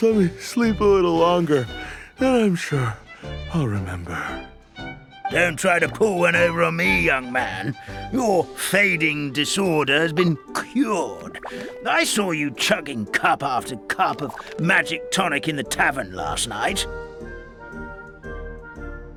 let me sleep a little longer, and I'm sure I'll remember. Don't try to pull one over on me, young man. Your fading disorder has been cured. I saw you chugging cup after cup of magic tonic in the tavern last night.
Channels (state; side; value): identical; both; correlation 1.00